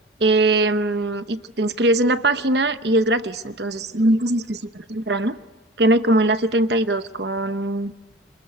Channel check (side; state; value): both; normal; correlation 0.38